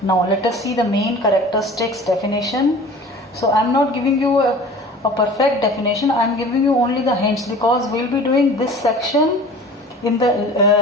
let us see the main characteristics definition. So I am not giving you a perfect definition, I am giving you only the hints, because we will be doing this section in the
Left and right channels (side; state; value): both; normal; correlation 0.42